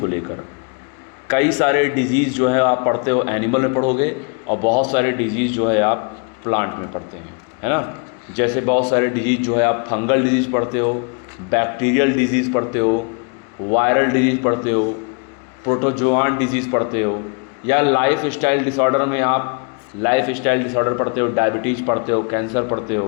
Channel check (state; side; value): quieter; right; 36.9 dB